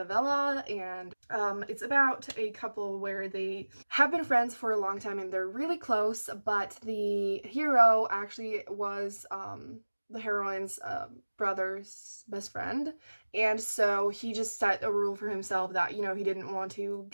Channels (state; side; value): inverted; both; correlation -1.00